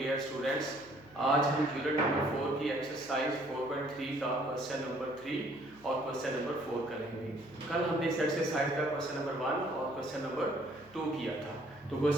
स्टूडेंट्स। आज हम यूनिट नंबर 4 की एक्सरसाइज 4.3 का क्वेश्चन नंबर 3 और क्वेश्चन नंबर 4 करेंगे। कल हमने इस एक्सरसाइज का क्वेश्चन नंबर 1 और क्वेश्चन नंबर 2 किया था। तो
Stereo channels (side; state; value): left; noise; hum, 26 dB below the sound